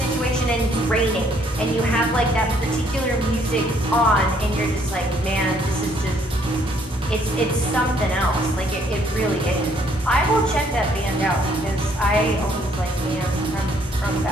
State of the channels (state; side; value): normal; both; correlation 0.66